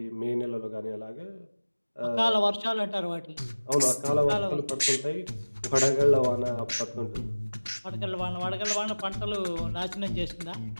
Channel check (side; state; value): both; inverted; correlation -1.00